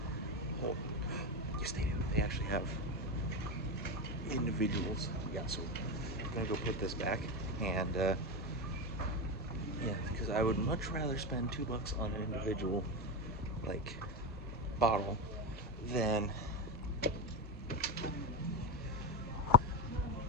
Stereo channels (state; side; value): normal; both; correlation 0.15